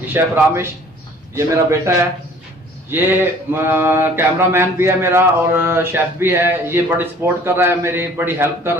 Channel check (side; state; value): both; normal; correlation 0.52